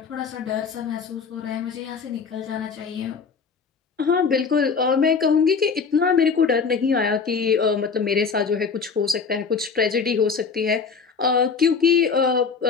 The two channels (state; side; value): quieter; right; 5.5 dB